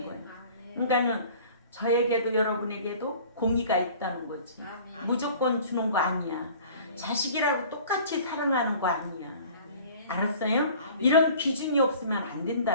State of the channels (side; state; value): both; inverted; correlation -0.47